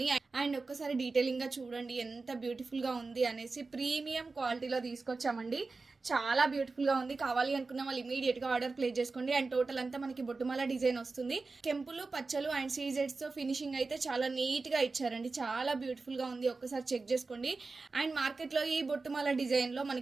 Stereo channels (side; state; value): left; quieter; 3.9 dB